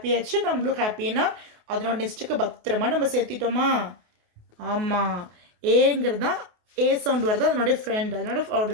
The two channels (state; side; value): late; left; 28 ms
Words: ஆச்சு, நம்மளும் ஹாப்பின்னா அதனோட நெக்ஸ்ட்டுக்கு பத்திரமா நம்ம சேர்த்திட்டோமா? ஆமாம். ஏங்கிறது தான் ஏ சவுண்ட் வருது, அதனுடைய ஃப்ரெண்ட்.